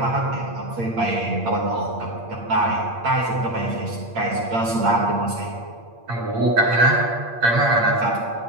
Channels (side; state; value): left; late; 8.7 ms